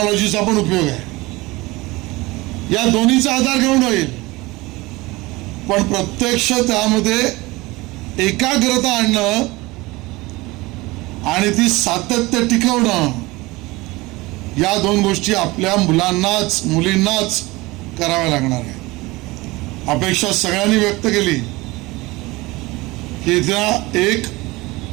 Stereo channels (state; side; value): quieter; left; 21.7 dB